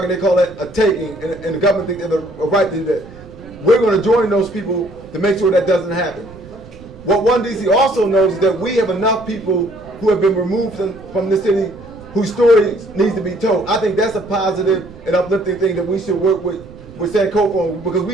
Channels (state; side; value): noise; right; rumble, 19 dB below the sound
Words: they call that a taking, and the government thinks they have a right to do that. We're going to join those people to make sure that doesn't happen. What 1DC also knows is that we have enough people who have been removed from the city whose story needs to be told. I think that's a positive and uplifting thing that we should work with Sankofa on, because